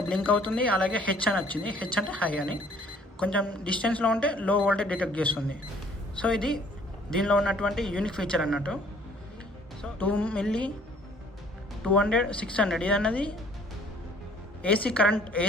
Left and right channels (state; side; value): normal; both; correlation 0.57